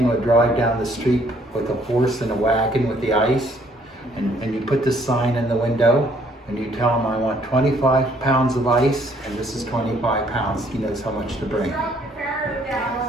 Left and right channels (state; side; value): normal; both; correlation 0.64